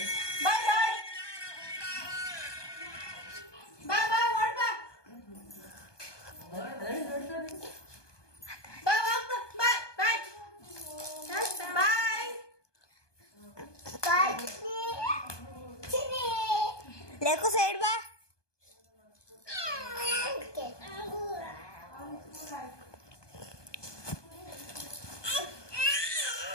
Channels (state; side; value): late; right; 1.2 ms